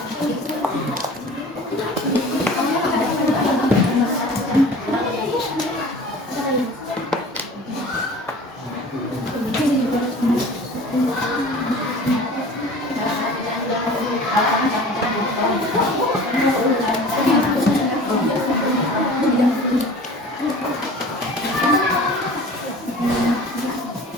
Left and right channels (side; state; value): both; normal; correlation 0.42